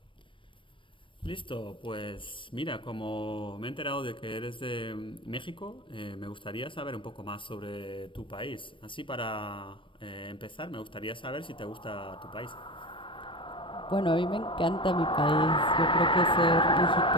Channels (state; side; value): late; right; 0.25 ms